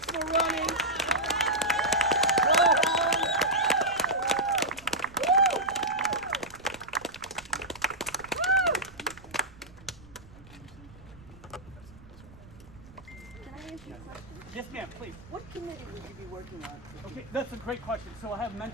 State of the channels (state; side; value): noise; right; rumble, 21 dB below the sound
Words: for running. Go home. Can I ask you a question? Yes, ma'am, please. What committee would you be working on? Okay, that's a great question. So I have